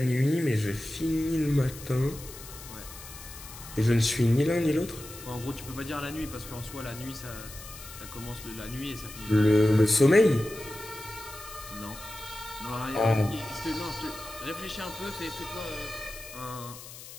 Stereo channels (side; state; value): left; noise; hiss, 14 dB below the sound